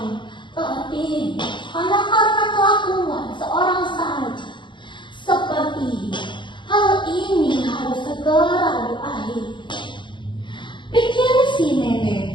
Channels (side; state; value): right; late; 0.23 ms